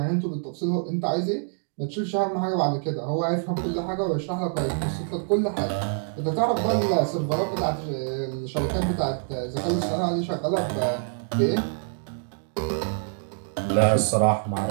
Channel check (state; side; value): silent; left; 61 dB below the other